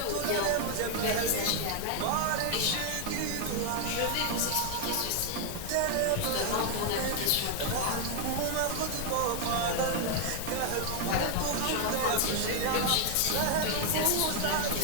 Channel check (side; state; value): both; different; correlation 0.00